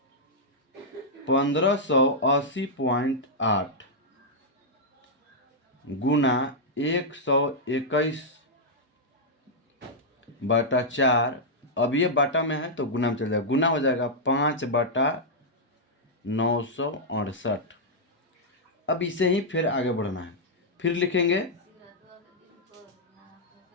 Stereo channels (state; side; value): normal; both; correlation -0.07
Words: 1580.8 गुना 121/4। अब ये बाटा में है तो गुना में चल जाएगा, गुना हो जाएगा 5/968। अब इसे ही फिर आगे बढ़ना है। फिर लिखेंगे